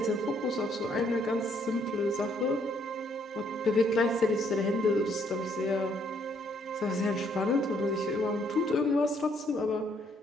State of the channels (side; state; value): both; normal; correlation 0.69